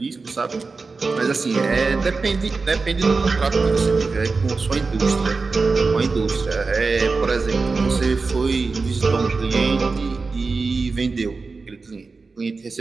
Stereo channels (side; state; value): left; quieter; 4.2 dB